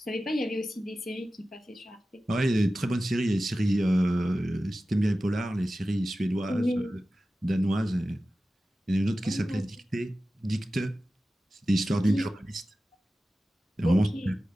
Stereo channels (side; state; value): both; normal; correlation 0.95